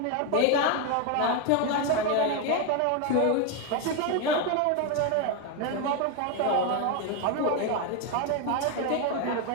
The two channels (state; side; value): different; both; correlation 0.01